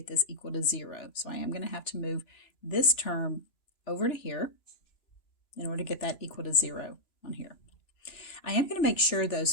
this equal to 0. So I am going to have to move this term over to here in order to get that equal to 0 on here. I am going to make sure, though,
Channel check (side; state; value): right; late; 3.0 ms